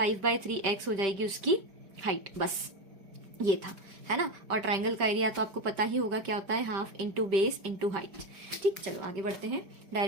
हो जाएगी उसकी हाइट, बस ये था, है ना। और ट्राइंगल का एरिया तो आपको पता ही होगा क्या होता है, half into base into height. ठीक, चलो आगे बढ़ते हैं,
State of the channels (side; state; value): left; late; 5.1 ms